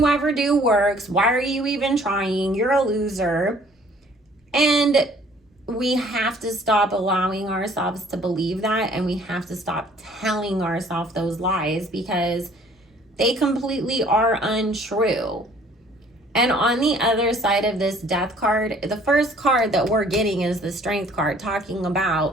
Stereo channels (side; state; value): both; normal; correlation 0.56